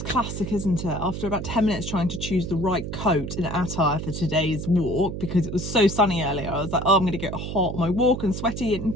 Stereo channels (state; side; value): noise; right; hum, 6 dB below the sound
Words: classic, isn't it? After about 10 minutes trying to choose the right coat and attire for today's walk, because it was so sunny earlier, I was like, oh, I'm going to get hot on my walk and sweaty and